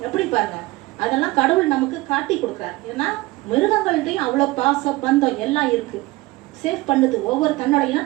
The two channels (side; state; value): left; quieter; 20.5 dB